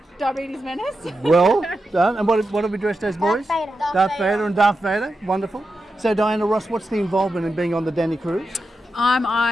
Diabetes menace. Well done. And what are we dressed as, boys? Darth Vader and Darth Vader. Wonderful. So, Diana Ross, what's the involvement in being on the Danii cruise?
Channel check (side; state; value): both; normal; correlation 0.89